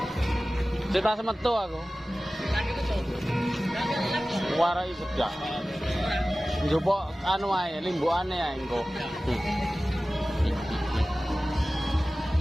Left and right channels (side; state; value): both; normal; correlation 0.96